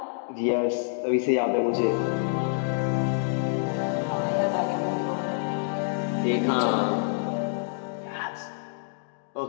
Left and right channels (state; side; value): silent; right; digital silence